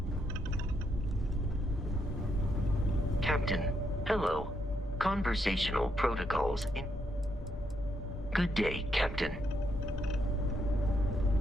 Captain, hello. Conversational protocols in... Good day, Captain.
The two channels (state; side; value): normal; both; correlation 0.78